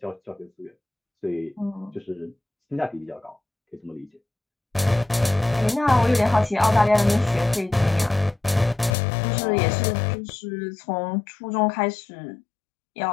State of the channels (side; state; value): right; drops out; at 9.0 s